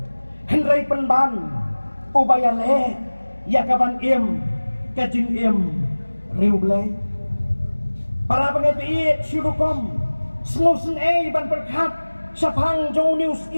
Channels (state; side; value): inverted; both; correlation -1.00